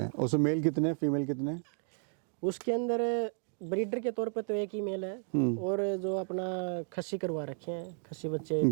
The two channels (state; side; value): silent; left; 56 dB below the other